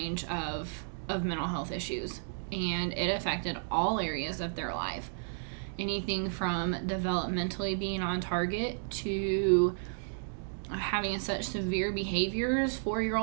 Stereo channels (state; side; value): silent; left; digital silence